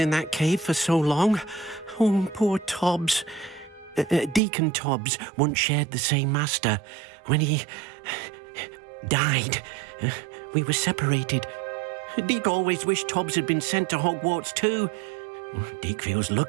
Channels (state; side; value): drops out; left; at 4.4 s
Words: that cave for so long. Oh, poor Tobbs. Deke and Tobbs once shared the same master. When he died, we were separated. Deke always wished Tobbs had been sent to Hogwarts too. Deke feels